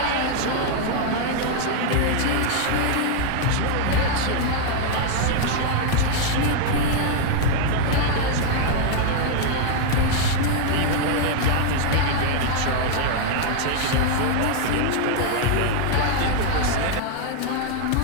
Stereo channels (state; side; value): different; both; correlation 0.00